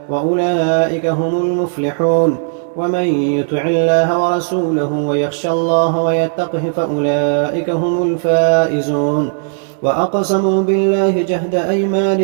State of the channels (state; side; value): silent; left; digital silence